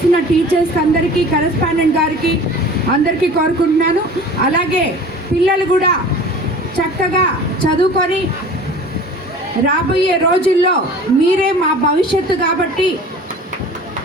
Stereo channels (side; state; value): both; normal; correlation 0.42